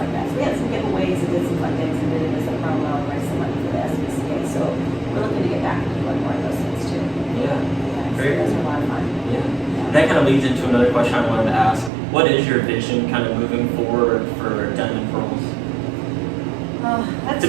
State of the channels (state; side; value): drops out; left; at 11.9 s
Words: that. So we had some giveaways and did some fun things and did it as a promo and raised some money for the SPCA. So we're looking to get back into doing more of those things too. Yeah. Great. So those are a lot of fun. Yeah. That kind of leads into another question I wanted to ask. What is your vision kind of moving forward for Denim Pearls? It's